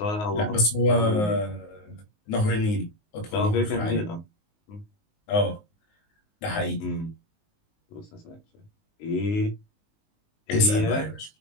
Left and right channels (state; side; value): late; right; 19 ms